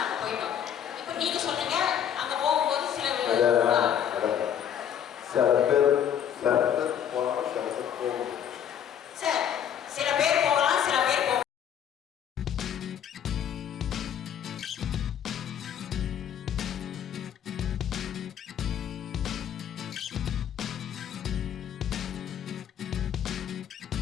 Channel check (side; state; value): right; quieter; 9.2 dB